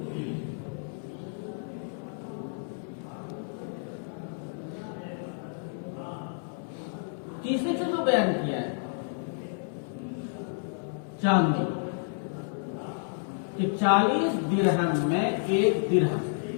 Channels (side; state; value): right; silent; 58 dB below the other